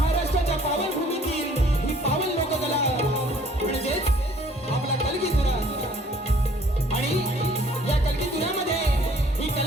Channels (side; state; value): both; normal; correlation 0.57